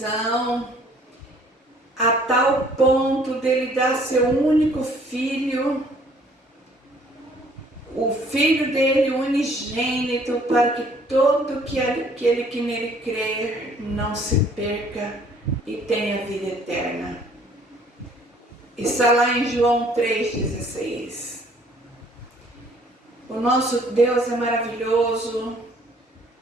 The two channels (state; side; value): normal; both; correlation 0.59